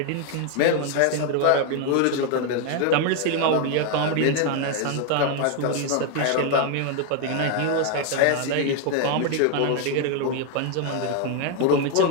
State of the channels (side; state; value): both; different; correlation 0.01